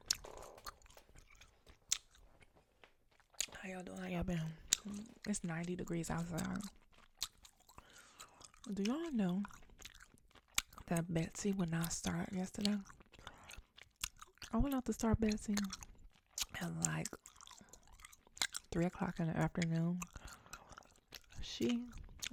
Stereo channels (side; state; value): both; identical; correlation 1.00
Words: How y'all doing? How y'all been? It's 90 degrees outside. Do y'all know that Betsy would not start yesterday? I went out to start Betsy at like 3 o'clock in the afternoon. She